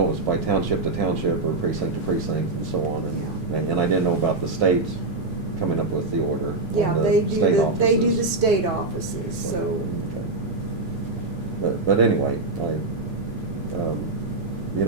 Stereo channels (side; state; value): left; quieter; 3.2 dB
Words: it was by township to township or precinct to precinct and so on, and I didn't know about the state coming up with the order. Yeah, on the they do state they do the offices. state offices, so. Okay. But anyway, you